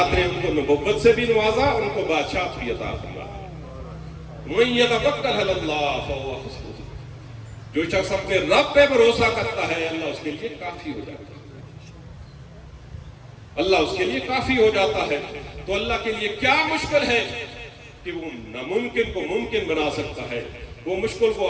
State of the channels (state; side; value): identical; both; correlation 1.00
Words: نے ان کو نبوت سے بھی نوازا اور ان کو بادشاہت بھی عطا فرمایا. من یتوکل علی اللہ فہو حسبہ، جو شخص اپنے رب پہ بھروسہ کرتا ہے اللہ اس کے لیے کافی ہو جاتا ہے، اللہ اس کے لیے کافی ہو جاتا ہے. تو اللہ کے لیے کیا مشکل ہے کہ وہ ناممکن کو ممکن بنا سکتا ہے، وہ مشکل